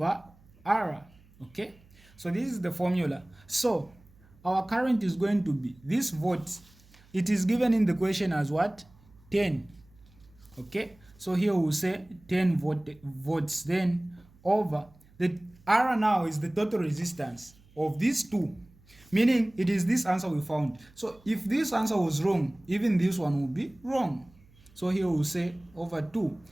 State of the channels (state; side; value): noise; right; hum, 28 dB below the sound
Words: R. Okay, so this is the formula. So our current is going to be this volt. It is given in the question as what? 10. Okay, so here we'll say 10 volts, then over the R now is the total resistance of these two, meaning it is this answer we found. So if this answer was wrong, even this one will be wrong. So here we'll say over 2,